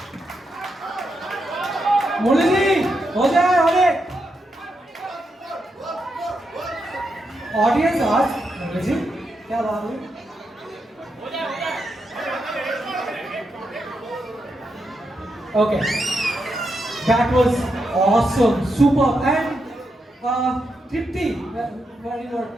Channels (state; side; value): normal; both; correlation 0.84